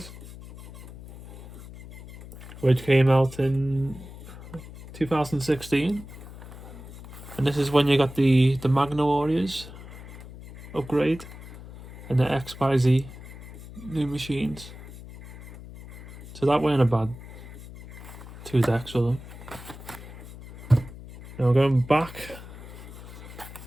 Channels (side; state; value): left; noise; hum, 15 dB below the sound